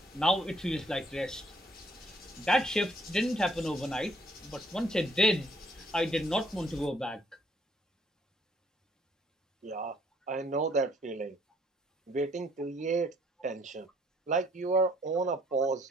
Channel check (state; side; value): normal; both; correlation 0.64